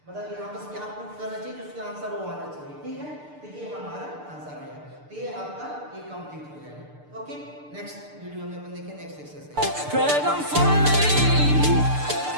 मतलब यहाँ पर क्या प्रूफ करना चाहिए, उसका आंसर वो आना चाहिए, ठीक है। तो ये हमारा आंसर है, तो ये आपका ये कंप्लीट हो जाएगा, ओके। नेक्स्ट वीडियो में अपन देखें next exercise. Dragon for me.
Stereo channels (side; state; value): left; late; 6.7 ms